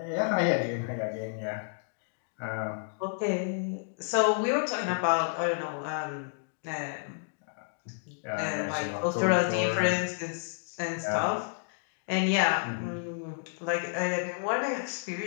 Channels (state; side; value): silent; right; digital silence